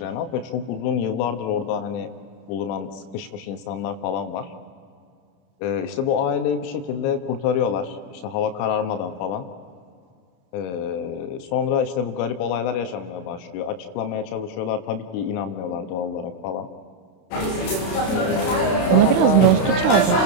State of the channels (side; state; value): right; late; 32 ms